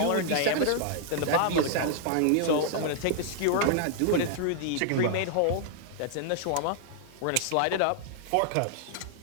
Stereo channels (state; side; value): different; both; correlation -0.01